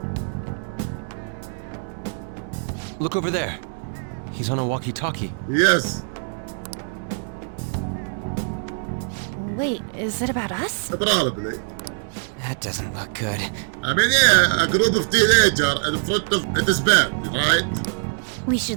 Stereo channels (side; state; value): left; silent; 63 dB below the other